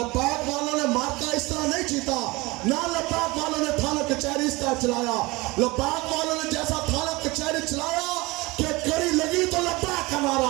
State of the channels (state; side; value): quieter; left; 22.9 dB